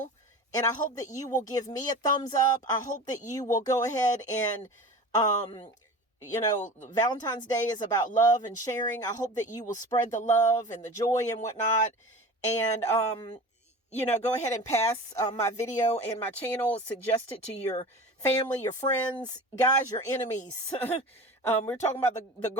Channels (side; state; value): both; normal; correlation 0.35